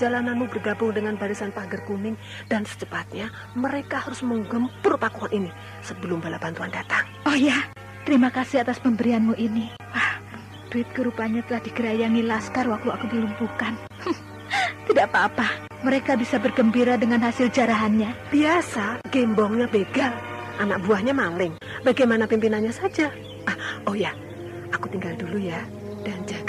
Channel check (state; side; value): identical; both; correlation 1.00